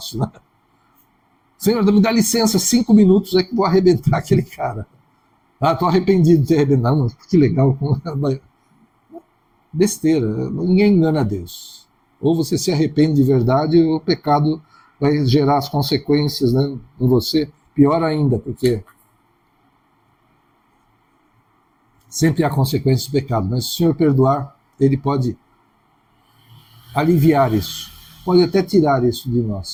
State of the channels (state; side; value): identical; both; correlation 1.00